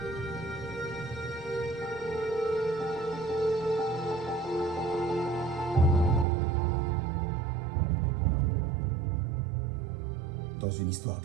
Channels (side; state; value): left; drops out; at 6.2 s